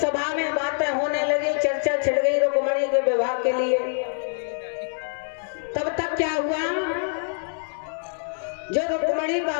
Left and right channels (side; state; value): right; silent; digital silence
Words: में बातें होने लगी, चर्चा छिड़ गई रुक्मणी के विवाह के लिए। तब तक क्या हुआ, जो रुक्मणी